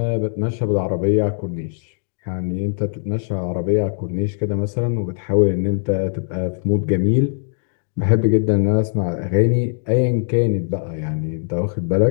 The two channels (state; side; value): silent; right; digital silence